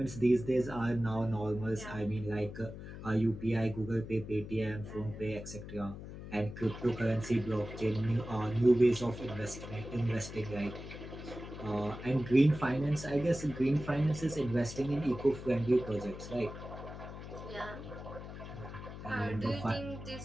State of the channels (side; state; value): left; noise; hum, 11 dB below the sound